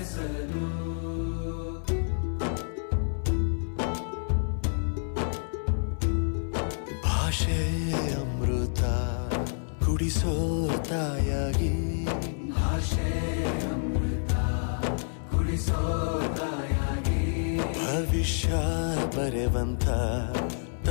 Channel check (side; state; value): right; silent; 59 dB below the other